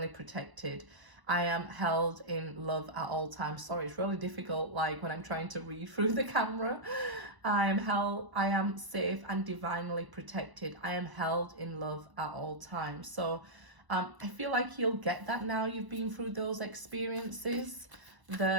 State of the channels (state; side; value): late; left; 1.0 ms